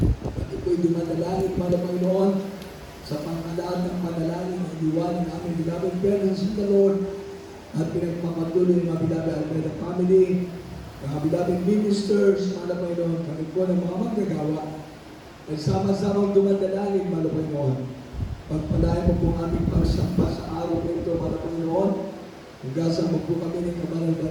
At ito'y dumadalangin para Panginoon sa pangalaan ng panalangin ng iwanan ng aming beloved parents in the Lord at pinagpapatuloy ng mga beloved Almeida family, mga beloved ministers, mga Panginoon, kami po ng mga manggagawa ay sama-sama dumadalangin, mga Panginoon. Pagpalain mo po aming pagsampa sa araw na ito, mga Panginoon. Hugasan mo po kami ng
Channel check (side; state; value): both; identical; correlation 1.00